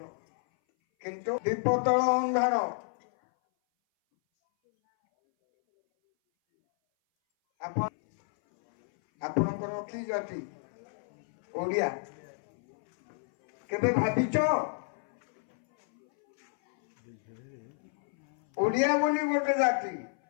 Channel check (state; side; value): silent; right; 57 dB below the other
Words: किंतु दीपतल अंधार आपणकर कि जाति ओडिया केबे भाविच ओडिया बोली गोटे जाति